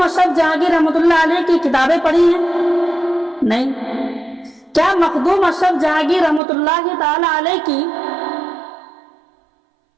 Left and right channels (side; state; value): left; drops out; at 6.4 s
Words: अशरफ जहांगीर रहमतुल्लाह अलैह की किताबें पढ़ी हैं? नहीं। क्या मखदूम अशरफ जहांगीर रहमतुल्लाह ताला अलैह की